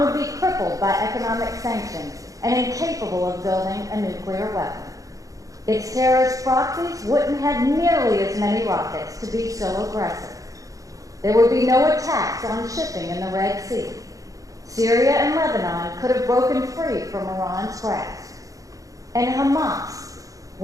be crippled by economic sanctions and incapable of building a nuclear weapon. Its terrorist proxies wouldn't have nearly as many rockets to be so aggressive. There would be no attacks on shipping in the Red Sea. Syria and Lebanon could have broken free from Iran's grasp. And Hamas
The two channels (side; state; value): left; late; 0.16 ms